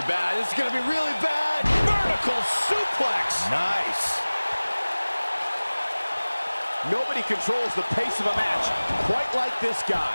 bad. This is going to be really bad. Vertical suplex. Nice. Nobody controls the pace of a match quite like this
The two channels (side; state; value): both; inverted; correlation -1.00